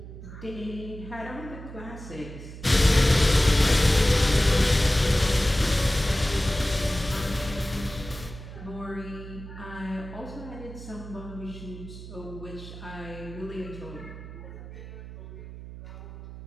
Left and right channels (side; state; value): right; noise; hum, 13 dB below the sound